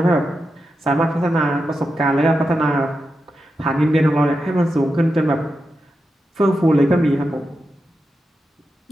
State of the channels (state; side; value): normal; both; correlation 0.89